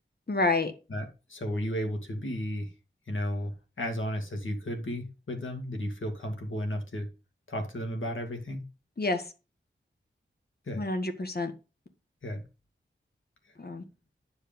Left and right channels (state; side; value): normal; both; correlation 0.51